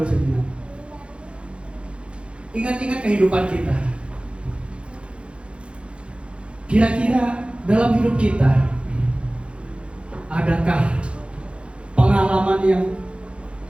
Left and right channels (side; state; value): left; late; 0.058 ms